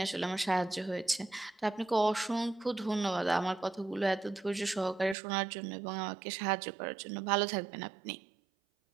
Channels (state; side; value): drops out; left; at 5.2 s